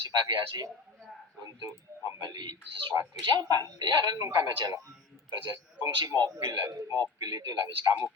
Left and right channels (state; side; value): quieter; right; 4.3 dB